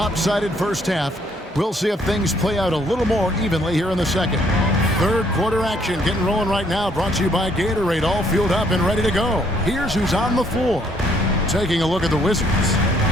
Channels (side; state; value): both; normal; correlation 0.67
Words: first half, we'll see if things play out a little more evenly here in the second. Third quarter action getting rolling right now, brought to you by Gatorade, all fueled up and ready to go. Here's who's on the floor. Taking a look at the Wizards.